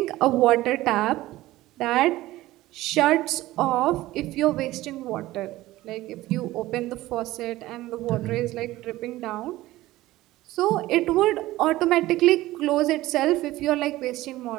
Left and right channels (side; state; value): left; quieter; 17.0 dB